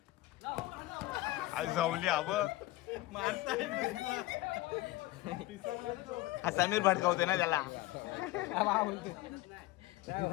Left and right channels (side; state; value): right; quieter; 17.5 dB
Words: आज जाऊली अब हा समीर भडकावते ना त्याला